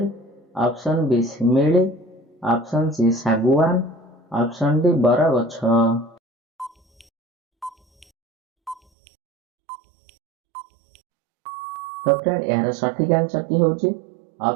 ऑप्शन बी शिमिली, ऑप्शन सी सागुआन, ऑप्शन डी बर गछ। तो फ्रेंड यार सठिक आंसर की होची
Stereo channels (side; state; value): left; drops out; at 8.8 s